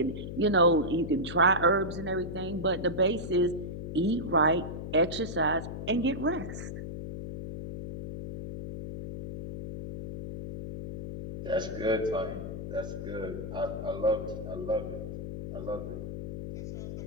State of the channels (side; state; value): left; noise; hum, 7 dB below the sound